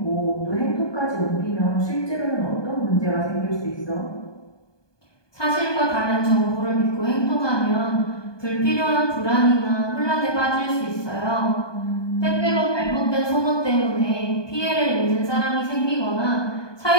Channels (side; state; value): right; late; 1.2 ms